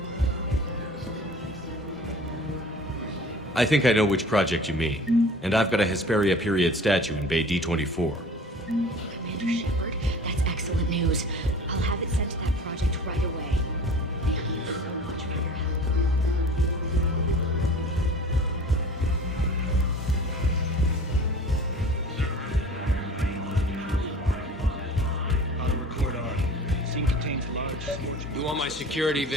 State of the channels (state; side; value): normal; both; correlation 0.43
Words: I think I know which project you mean. And I've got a Hesperia period statue in Bay D24. Commander Shepard, that's excellent news. I'll have it sent to that project right away. Thank you so much for your help. Auto record on. Scene contains large scorching. You want my security